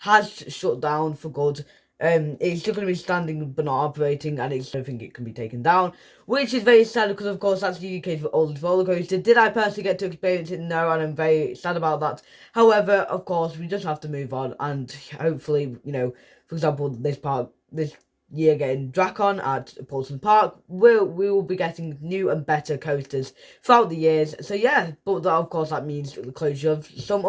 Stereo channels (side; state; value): both; identical; correlation 1.00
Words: shut down for good. It's still going to be standing but not operating, and I don't think it can be taken down, which is very sad because, of course, that's the UK's oldest roller coaster. Did I personally get to experience it? No, and I'm very sad about that. However, of course, we just have to move on, and hopefully, for example, this year getting Dracon at Paulson Park, we will be getting new and better coasters throughout the years. So yeah, but that, of course, that means the closure of some